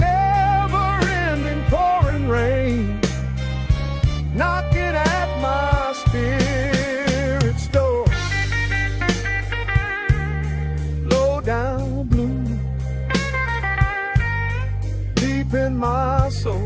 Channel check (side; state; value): both; identical; correlation 1.00